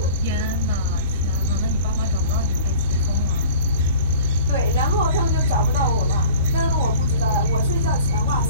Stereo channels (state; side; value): inverted; both; correlation -0.44